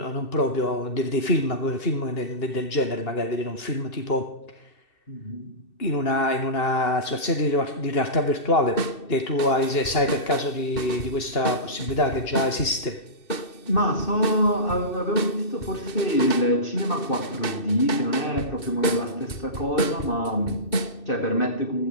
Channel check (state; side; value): late; right; 2.7 ms